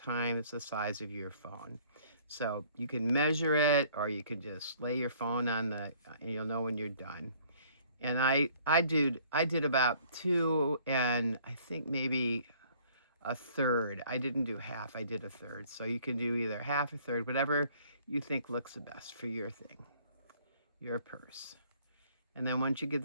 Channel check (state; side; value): inverted; both; correlation -0.58